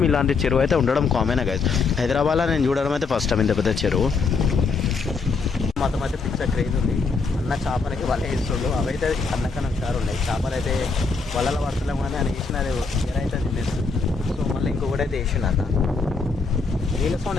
ఇలాంటి చెరువు అయితే ఉండడం కామన్ గైస్. హైదరాబాద్లో నేను చూడడం అయితే ఫస్ట్ టైం ఇంత పెద్ద చెరువు. మాత్రం అయితే పిక్చర్ క్రేజ్ ఉంది. అన్న చేపలకి వల వేస్తుండు. అవైతే అన్నకన్నా ఒకసారి ఉన్నాయి చేపలు అయితే వలలో పడతలేము కానీ అని వేసిన అది ఎరైతే తినేస్తుంది. సో మళ్ళీ ఇంకొకటి అయితే వేసిండు అన్న. నీళ్ళ సౌండ్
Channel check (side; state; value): right; quieter; 4.5 dB